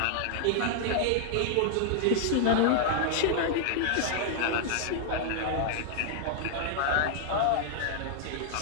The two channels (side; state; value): both; different; correlation 0.00